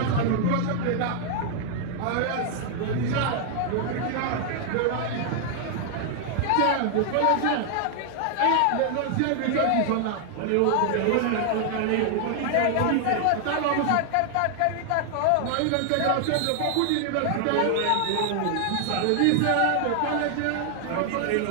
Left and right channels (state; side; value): different; both; correlation 0.00